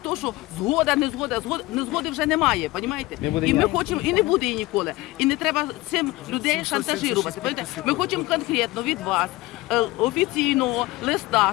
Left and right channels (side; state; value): right; quieter; 19.8 dB